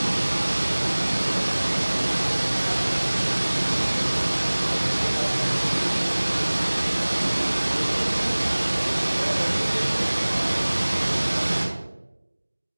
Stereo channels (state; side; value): inverted; both; correlation -1.00